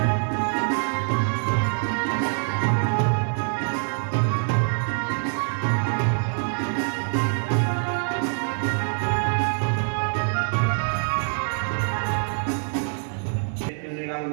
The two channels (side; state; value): left; silent; 62 dB below the other